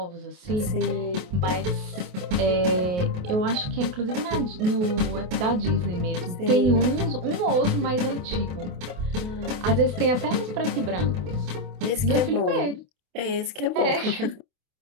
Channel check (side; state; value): left; late; 28 ms